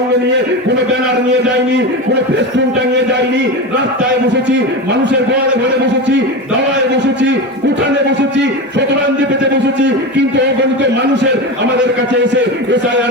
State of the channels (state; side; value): normal; both; correlation 0.22